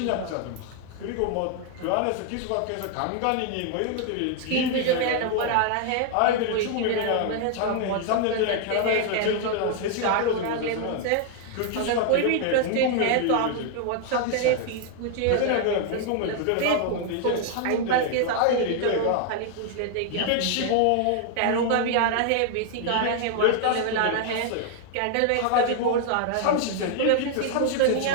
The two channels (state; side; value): different; both; correlation 0.00